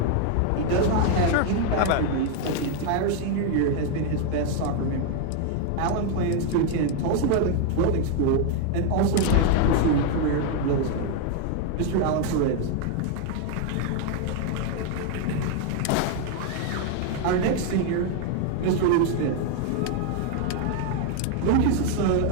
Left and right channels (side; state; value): both; different; correlation 0.01